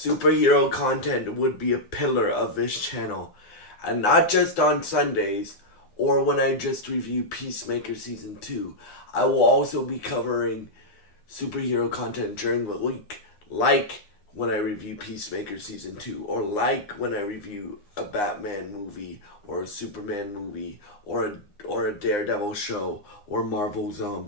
content would be a pillar of this channel, and not just on Sundays or when I just review Peacemaker Season 2. I will also be covering superhero content during the week, like when I review Peacemaker Season 2, or like when I review a Batman movie, or a Superman movie, or a Daredevil show, or Marvel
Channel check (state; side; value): late; right; 9.7 ms